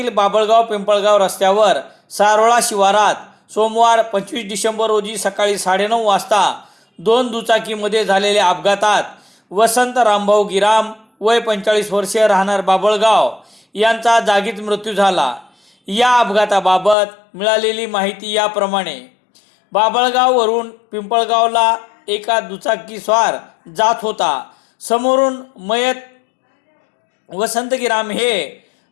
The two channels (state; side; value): drops out; right; at 16.9 s